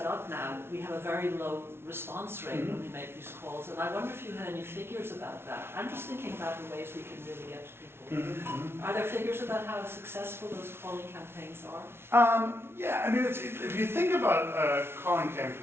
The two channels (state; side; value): late; left; 0.12 ms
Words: up now, we have a very low response rate when we make these calls. And I wonder if you had any figures about that. I'm just thinking about the ways we can really get to people. Are there figures about how successful those calling campaigns are? Yeah, I mean, if you think about a calling